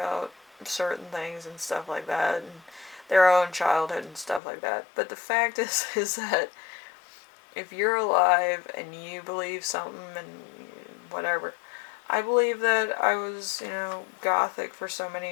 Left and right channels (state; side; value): drops out; right; at 4.4 s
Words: certain things and stuff like that, and their own childhood and stuff like that. But the fact is that if you're alive and you believe something and whatever, I believe that I was, gothic for so